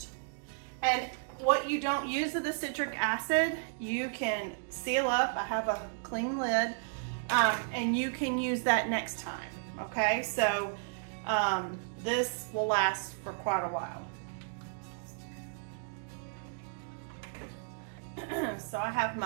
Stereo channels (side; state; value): left; silent; digital silence